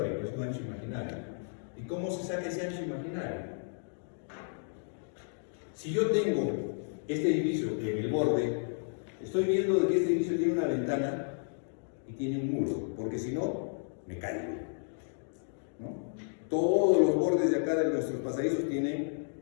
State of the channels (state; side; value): silent; right; digital silence